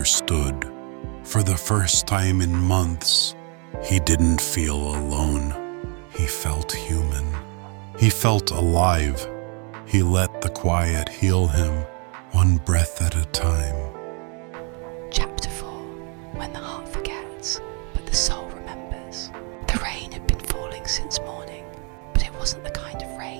For the first time in months, he didn't feel alone. He felt human. He felt alive. He let the quiet heal him, one breath at a time. Chapter 4. When the heart forgets, but the soul remembers. The rain had been falling since morning, but it wasn't the kind of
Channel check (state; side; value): quieter; left; 35.6 dB